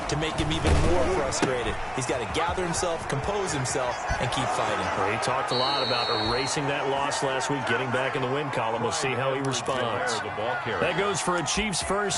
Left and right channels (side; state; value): both; identical; correlation 1.00